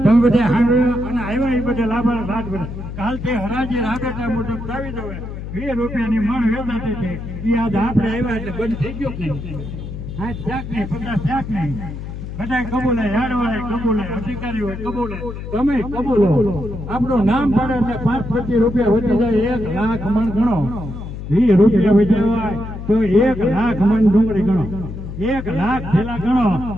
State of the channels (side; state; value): left; noise; hum, 8 dB below the sound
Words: તમે બધા સાંભળ્યા અને આવ્યા એ બધા લાભાર રાત બધા કાલથી હરાજી રાબેટા મુજબ લાવી દો. 20 રૂપિયાની મણ વેચાતી છે એ આજ આપણે આવ્યા એટલે બંધ થઈ ગયો નહીં. હા શાક નહીં 50 શાક નહીં બધા કબૂલે યાર્ડવાળા કબૂલે અધિકારીઓ કબૂલે તમે કબૂલો. આપણું નામ પડે એટલે 5-25 રૂપિયા વધી જાય 1 લાખ મણ ગણો. 20 રૂપિયા વધ્યા તો 1 લાખ મણ ડુંગળી ગણો. 1 લાખ થેલા ગણો